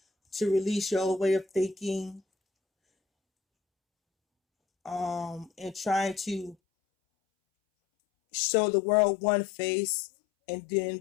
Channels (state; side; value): drops out; right; at 6.6 s